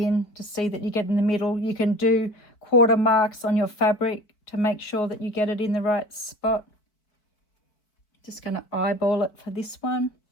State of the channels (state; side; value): late; right; 4.5 ms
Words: to see that you get in the middle. You can do quarter marks on your fabric to make sure that you get it in the right spot. Just going to eyeball it for this one.